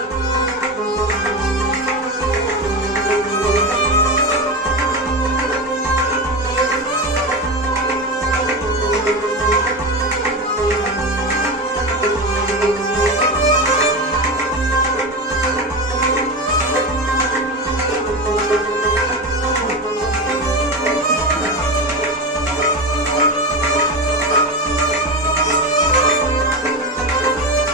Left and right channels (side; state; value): both; normal; correlation 0.21